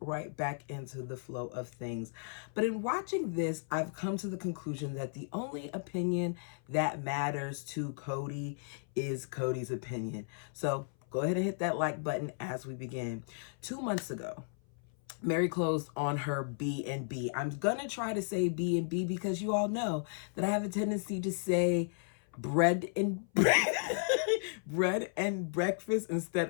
back into the flow of things. But in watching this, I've come to the conclusion that the only opinion that matters to Kody is Kody's opinion. So go ahead and hit that like button as we begin. 2 months ago, Mary closed on her B&B. I'm gonna try to say B&B because you all know that I have a tendency to say bread and bread and breakfast instead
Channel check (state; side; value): silent; right; 55 dB below the other